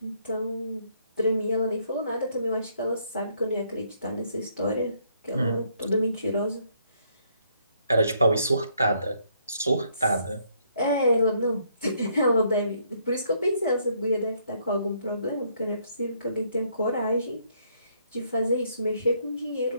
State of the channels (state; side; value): inverted; both; correlation -0.70